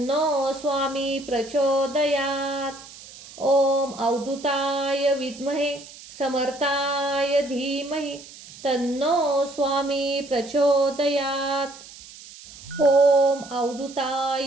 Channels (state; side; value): noise; right; hiss, 18 dB below the sound